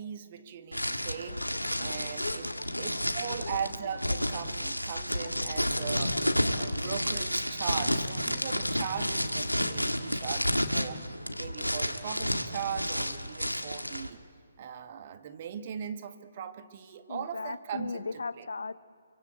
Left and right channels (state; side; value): inverted; both; correlation -0.90